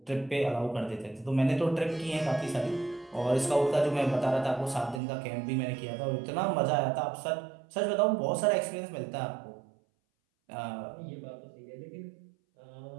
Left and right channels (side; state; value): left; drops out; at 5.0 s